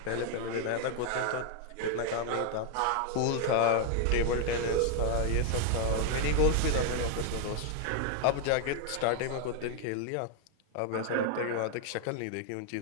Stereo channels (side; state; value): both; different; correlation 0.00